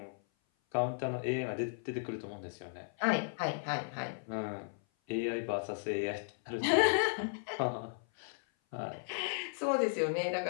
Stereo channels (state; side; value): silent; right; 54 dB below the other